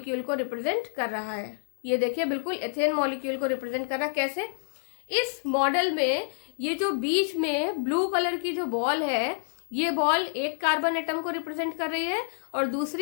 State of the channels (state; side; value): silent; right; digital silence